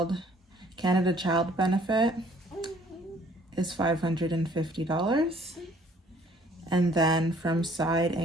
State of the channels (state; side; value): normal; both; correlation 0.59